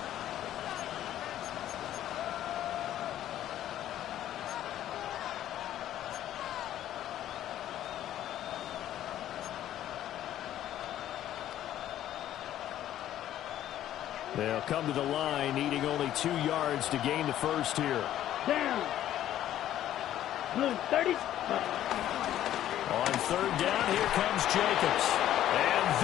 They'll come to the line, needing only 2 yards to gain the first here. Down. Blue 30. On 3rd down, here comes Jacobs. And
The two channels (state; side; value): quieter; right; 12.2 dB